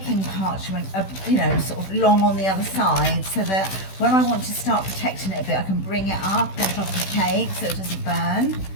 parchment, sort of long on the other side so that when I want to start protecting it a bit, I can bring it up on top of the cake so it doesn't burn.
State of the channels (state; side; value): late; right; 16 ms